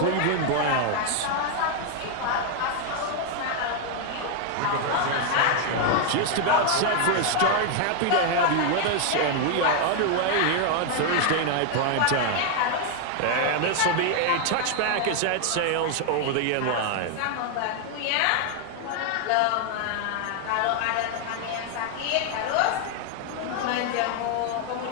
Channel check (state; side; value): different; both; correlation 0.00